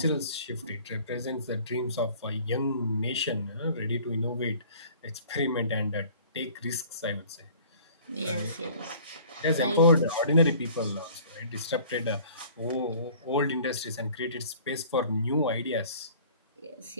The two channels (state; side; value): inverted; both; correlation -0.50